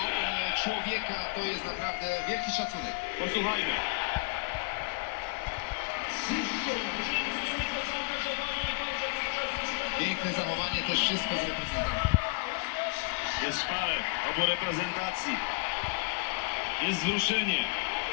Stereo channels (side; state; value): right; quieter; 30.0 dB